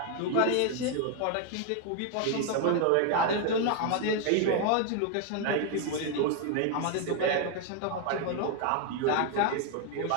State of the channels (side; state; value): both; different; correlation 0.01